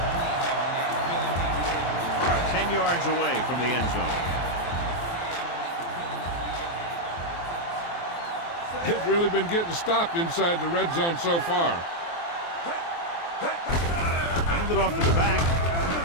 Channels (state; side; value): late; right; 23 ms